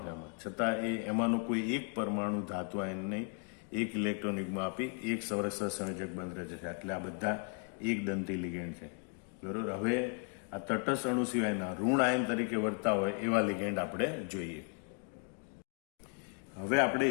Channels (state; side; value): quieter; right; 38.3 dB